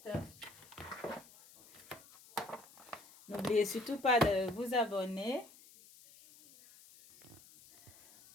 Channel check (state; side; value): noise; left; hiss, 22 dB below the sound